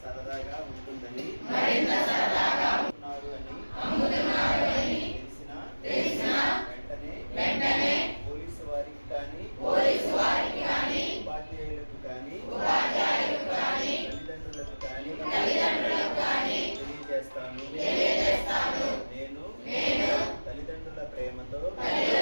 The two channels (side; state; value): both; inverted; correlation -1.00